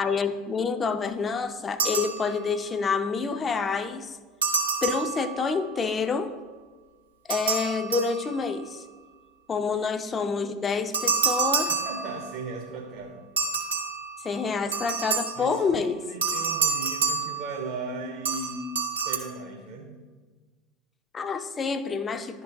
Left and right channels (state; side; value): normal; both; correlation 0.31